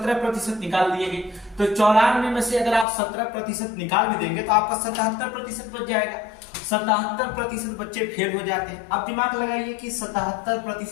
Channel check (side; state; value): right; drops out; at 2.9 s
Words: निकाल दिए गए। तो 94 में से अगर आप 17% निकाल भी देंगे तो आपका 77% बच जाएगा। 77% बच्चे फेल हो जाते हैं। अब दिमाग लगाइए कि